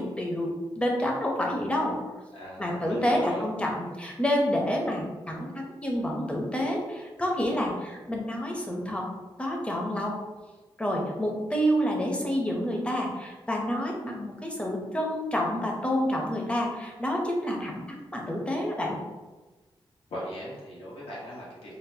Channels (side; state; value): both; normal; correlation 0.81